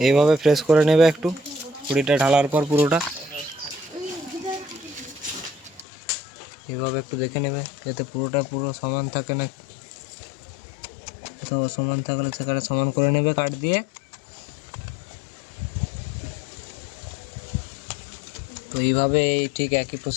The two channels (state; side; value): drops out; right; at 5.9 s